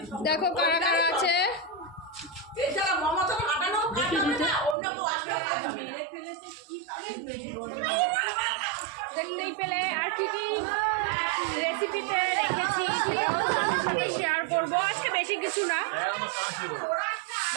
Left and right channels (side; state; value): left; drops out; at 4.8 s